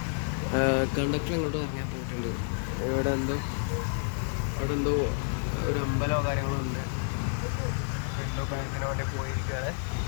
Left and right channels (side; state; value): right; silent; 58 dB below the other